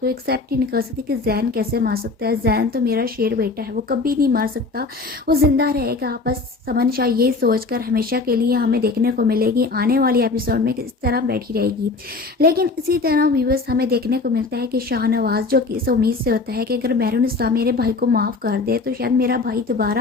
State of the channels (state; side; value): quieter; right; 3.8 dB